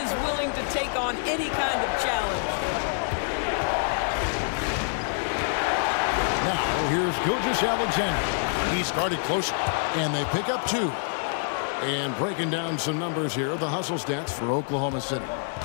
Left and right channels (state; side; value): silent; right; 61 dB below the other